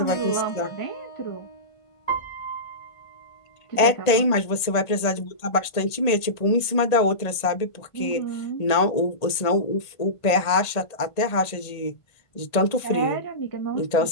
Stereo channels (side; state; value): right; late; 1.8 ms